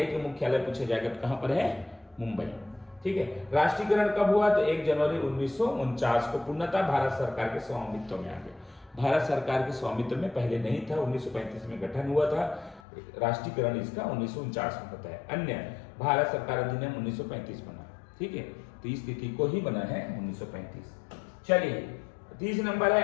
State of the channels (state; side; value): drops out; right; at 12.8 s